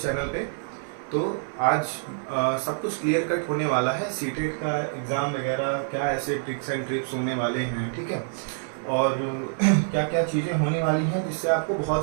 चैनल पे। तो आज सब कुछ क्लियर कट होने वाला है। सीटेट का एग्ज़ाम वगैरह क्या ऐसे ट्रिक्स एंड ट्रिप्स होने वाले हैं, ठीक है। और क्या क्या चीज़ें होने वाली हैं जिससे आपको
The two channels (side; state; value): left; silent; 56 dB below the other